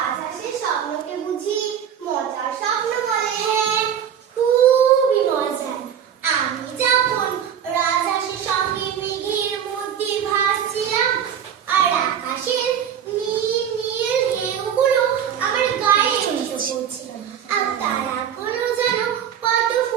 স্বপ্নকে বুঝি মজার স্বপ্ন বলে? হ্যাঁ, খুবই মজার। আমি যখন রাজহাঁসের সঙ্গে মেঘের মধ্যে ভাসছিলাম, আর আকাশের নীল নীল ঢেউগুলো আমার গায়ে এসে পড়ছিল, আর তারাগুলো যেন কত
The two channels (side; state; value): left; quieter; 8.7 dB